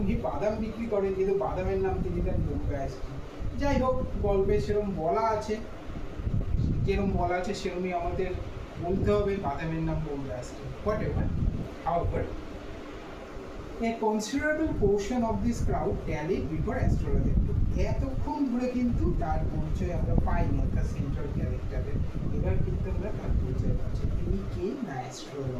বাদাম বিক্রি করেন কিন্তু বাদামের নাম তিনি দেন বোম্বে আইসক্রিম। যাই হোক, গল্পে সেরকম বলা আছে, যেরকম বলা আছে সেরকমই আমাদের বলতে হবে, বাদামের নাম Bombay ice cream. Whatever, however, a considerable portion of this crowd tallied before astrologer. এতক্ষণ ধরে কিন্তু তার পরিচয় আমরা পাইনি, অর্থাৎ সেন্ট্রাল ক্যারেক্টারের। এবার কিন্তু আমরা তার পরিচয় পাচ্ছি, তিনি কে না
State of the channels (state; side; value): identical; both; correlation 1.00